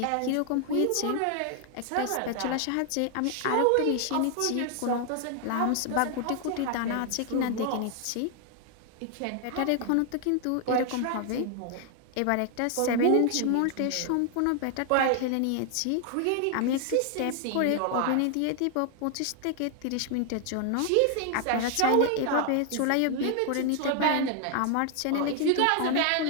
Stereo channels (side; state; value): both; different; correlation 0.00